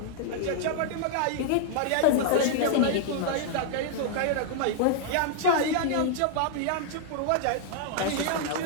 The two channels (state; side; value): different; both; correlation -0.01